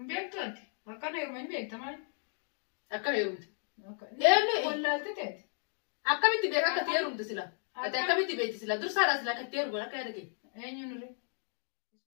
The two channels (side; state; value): right; silent; 55 dB below the other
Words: أكان يومين بيكتمال أكان يوم يعني ولا تتات أكمل تبيعك كتير يوم تسلا أكمل تبيع تسلا درس هذا سلا كتير ولا كذا كي أين نوري